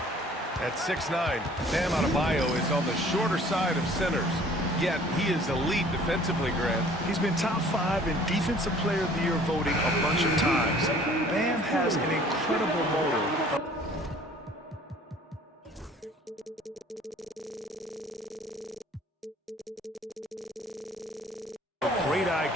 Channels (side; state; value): both; normal; correlation 0.53